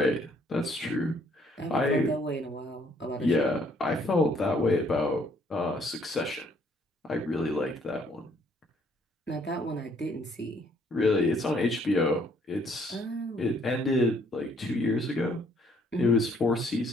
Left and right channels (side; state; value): both; normal; correlation 0.65